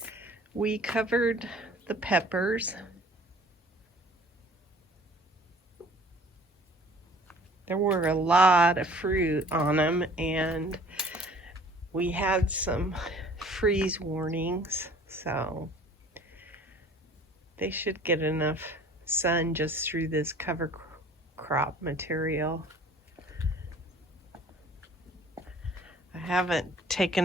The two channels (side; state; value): both; normal; correlation 0.51